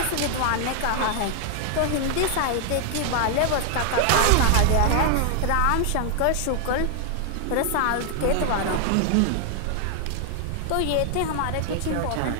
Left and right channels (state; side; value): different; both; correlation 0.00